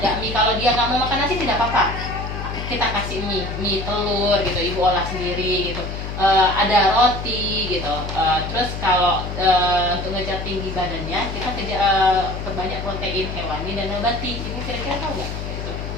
mie. Kalau dia nggak mau makan nasi tidak apa-apa, kita kasih mie telur gitu, ibu olah sendiri gitu. Ada roti gitu. Terus kalau untuk ngejar tinggi badannya, kita perbanyak protein hewani dan nabati. Ibu kira-kira tahu nggak?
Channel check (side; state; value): left; noise; hum, 6 dB below the sound